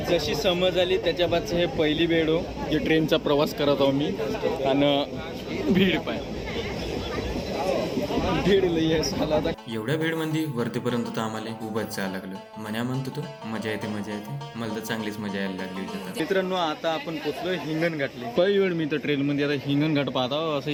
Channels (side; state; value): both; identical; correlation 1.00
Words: जशी समज आली त्याच्या बादचं हे पहिली वेळ हो जे ट्रेनचा प्रवास करत आहो मी. आणि भीड पाय, भीड लई आहे साला. आता एवढ्या भेडमध्ये वरतीपर्यंत तर आम्हाला उभंच जायला लागलं. मन्या म्हणतो तो मजा येते मजा येते, मला तर चांगलीच मजा यायला लागली होती. मित्रांनो आता आपण पोचलो हिंगणघाटले. पहिली वेळ मी तर ट्रेनमध्ये आता हिंगणघाट पाहता.